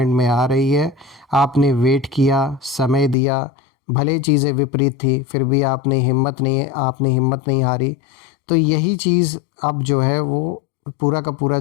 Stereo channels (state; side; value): drops out; right; at 3.2 s